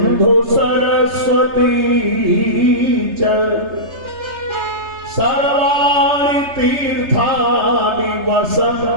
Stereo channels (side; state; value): left; late; 3.3 ms